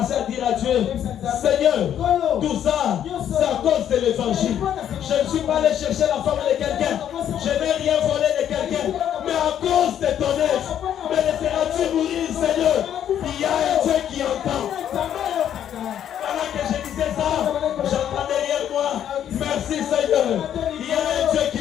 à dire à Dieu, Seigneur, tout ça, c'est à cause de l'évangile. Je ne suis pas allé chercher la femme de quelqu'un. Je n'ai rien volé de quelqu'un. Mais à cause de ton œuvre, me laisseras-tu mourir, Seigneur? Il y a un Dieu qui entend. Pendant que je disais ça, j'entends derrière moi, merci Seigneur. Il y a un Dieu qui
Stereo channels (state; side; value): quieter; right; 10.0 dB